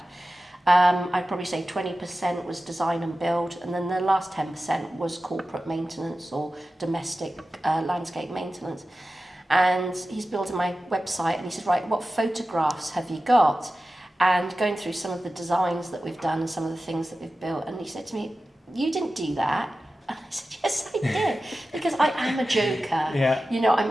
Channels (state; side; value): normal; both; correlation 0.94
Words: I'd probably say 20% was design and build, and then the last 10% was corporate maintenance or domestic landscape maintenance. And he's building my website, and he said, right, what photographs have you got? And going through some of the designs that we've done and some of the things that we've built, and he said to me, you didn't do that. And I said, yes, I did, because I am a joker. Yeah. You know, I'm